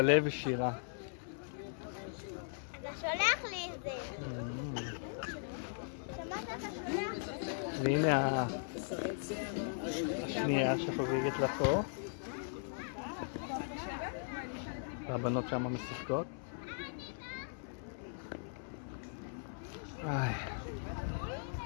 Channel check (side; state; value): right; silent; 52 dB below the other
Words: ושירה. אתה שולח לי את זה. שמעת אתה שולח לי? והנה השנייה שחוגגת לה פה. והבנות שם משחקות.